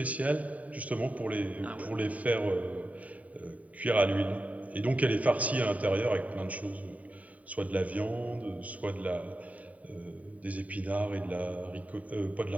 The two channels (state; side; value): late; left; 0.070 ms